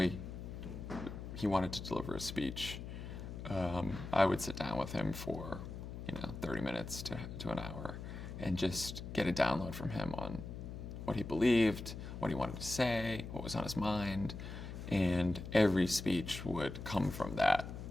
he wanted to deliver a speech, I would sit down with him for 30 minutes to an hour and just get a download from him on what he believed, what he wanted to say, what was on his mind, and every speech would come from that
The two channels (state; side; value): noise; left; hum, 8 dB below the sound